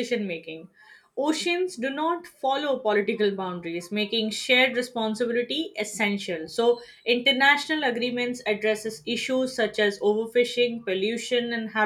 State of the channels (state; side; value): identical; both; correlation 1.00